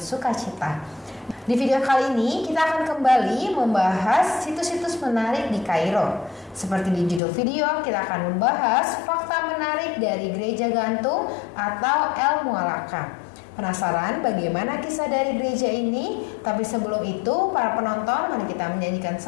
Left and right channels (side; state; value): right; drops out; at 7.2 s